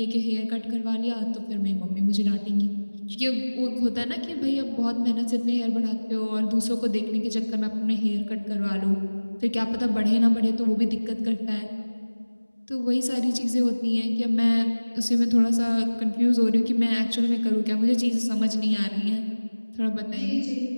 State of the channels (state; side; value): inverted; both; correlation -1.00